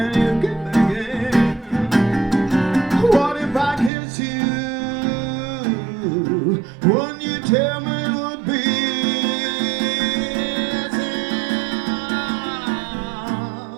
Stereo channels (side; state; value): left; drops out; at 3.9 s